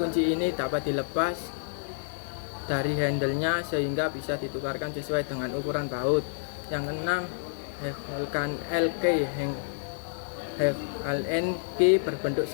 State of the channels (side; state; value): right; silent; 59 dB below the other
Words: ini dapat dilepas dari handle-nya sehingga bisa ditukarkan sesuai dengan ukuran baut. Yang keenam, LK LNK berbentuk